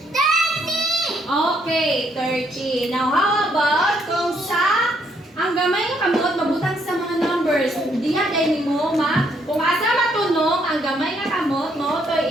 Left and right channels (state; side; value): normal; both; correlation 0.71